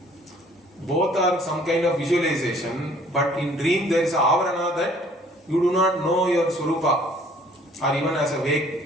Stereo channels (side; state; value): both; normal; correlation 0.57